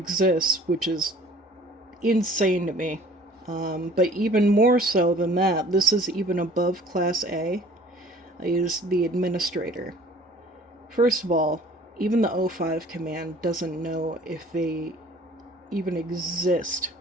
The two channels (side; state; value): both; normal; correlation 0.50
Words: which is insane to me. But even more so than that, this is even above Class A, is the administrator. First of all, even the O5 command doesn't know if they even exist,